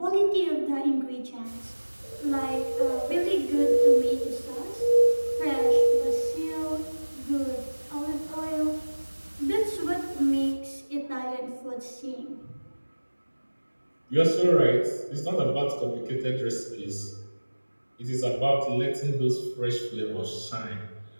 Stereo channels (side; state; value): both; inverted; correlation -1.00